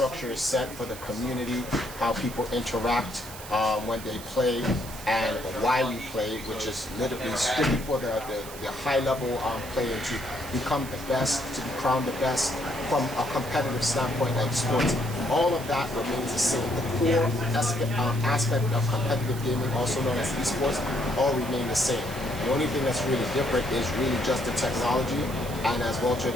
is set for the community, how people interact when they play, and why we play, which is literally strictly for the high level player to become the best, to be crowned the best from a competitive standpoint like sports. All of that remains the same. The core aspect of competitive gaming, also known as esports, all remain the same. The only thing that's really different is really just the technology, and as Walter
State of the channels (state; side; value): noise; right; hiss, 14 dB below the sound